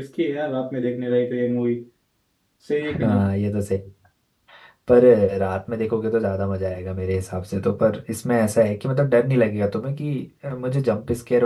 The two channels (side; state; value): both; identical; correlation 1.00